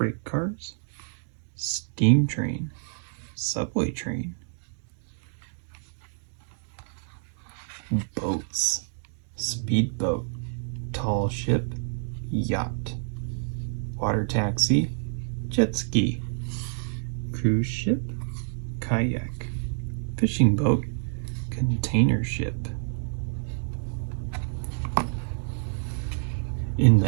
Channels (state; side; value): silent; left; digital silence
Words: cars, steam train, subway train. Boats, speedboat, tall ship, yacht, water taxi, jet ski, cruise ship, kayak, fishing boat, container ship. In